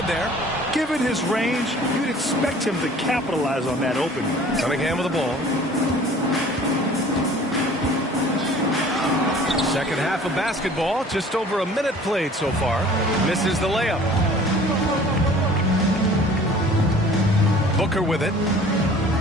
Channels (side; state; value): both; normal; correlation 0.49